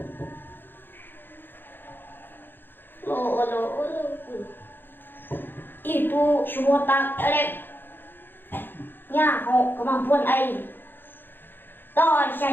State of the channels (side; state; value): right; late; 0.097 ms